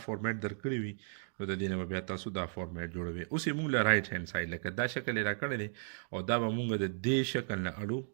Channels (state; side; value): silent; left; digital silence